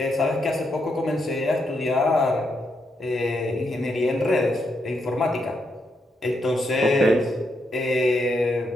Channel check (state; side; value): normal; both; correlation 0.80